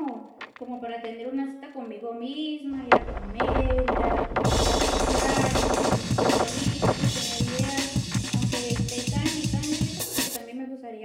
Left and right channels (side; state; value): both; identical; correlation 1.00